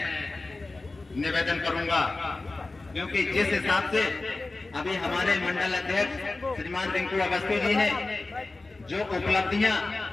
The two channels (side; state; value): right; quieter; 3.3 dB